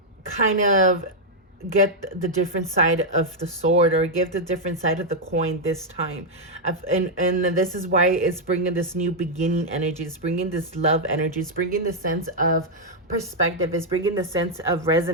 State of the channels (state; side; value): normal; both; correlation -0.02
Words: kind of get the different side of the sword, or give the different side of the coin this time. And this is why it's bringing this new beginning energy. It's bringing this love energy. It's bringing the sense of perspective. It's bringing a sense of